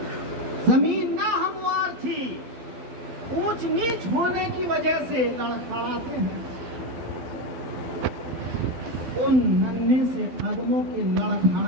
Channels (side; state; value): left; late; 12 ms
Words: زمین ناہموار تھی، اونچ نیچ ہونے کی وجہ سے لڑکھڑاتے ہیں۔ ان ننھے سے قدموں کے